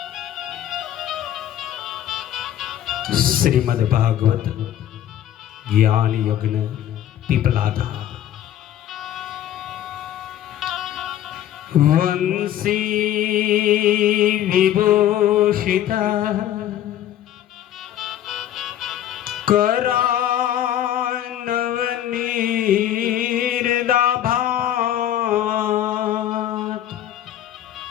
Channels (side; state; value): right; quieter; 11.6 dB